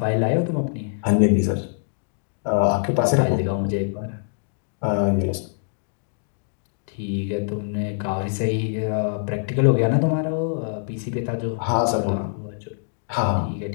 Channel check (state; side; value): silent; right; digital silence